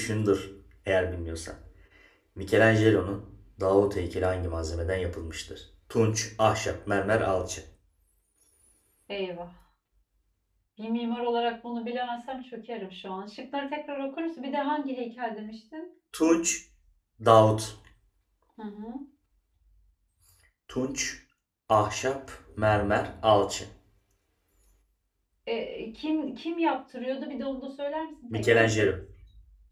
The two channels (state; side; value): identical; both; correlation 1.00